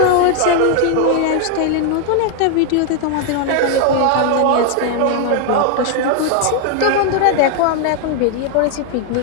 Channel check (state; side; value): different; both; correlation 0.00